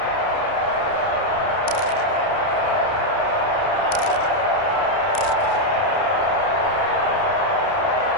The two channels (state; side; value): late; right; 30 ms